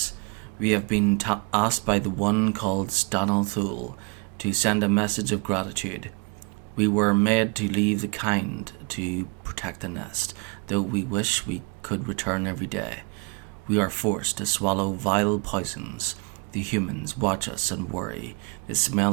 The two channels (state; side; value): quieter; left; 32.5 dB